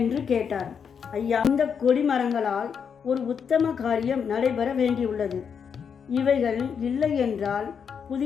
கேட்டார். ஐயா, இந்த கொடிமரங்களால் ஒரு உத்தம காரியம் நடைபெற வேண்டியுள்ளது. இவைகள் இல்லை என்றால்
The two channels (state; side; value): quieter; right; 6.9 dB